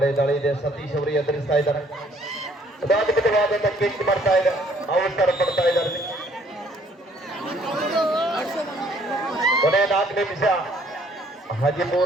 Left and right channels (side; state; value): both; normal; correlation 0.62